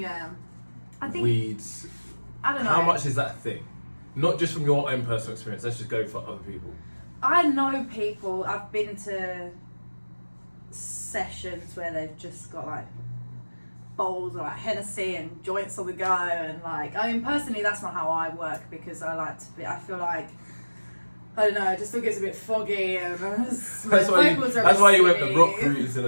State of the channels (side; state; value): both; inverted; correlation -1.00